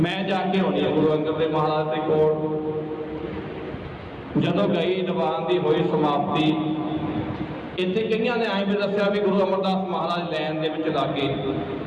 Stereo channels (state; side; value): identical; both; correlation 1.00